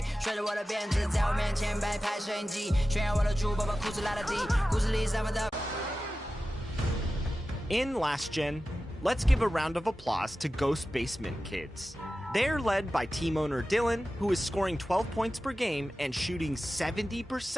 甩着我的辫子，在我面前摆拍摄影机，炫耀我的珠宝，把裤子拉得低，故事里散发的。In Last Gen, let's give a round of applause to Ghost Basement Kids. They're led by team owner Dylan, who is scoring 12 points per game and shooting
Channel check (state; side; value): normal; both; correlation 0.94